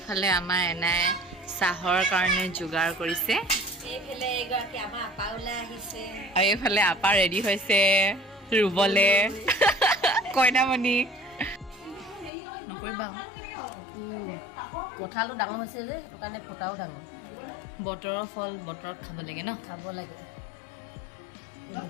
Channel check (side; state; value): right; drops out; at 12.3 s